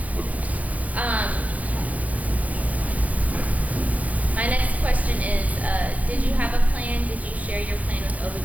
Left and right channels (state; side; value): late; left; 0.072 ms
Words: My next question is, did you have a plan? Did you share your plan with